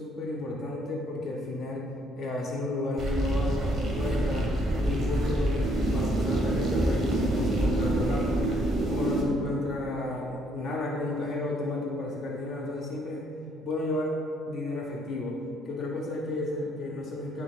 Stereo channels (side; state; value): both; normal; correlation 0.68